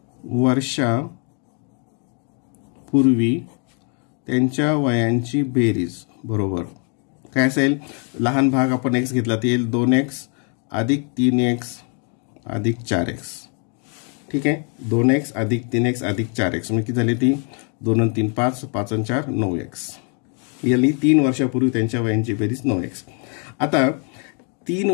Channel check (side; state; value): right; quieter; 39.8 dB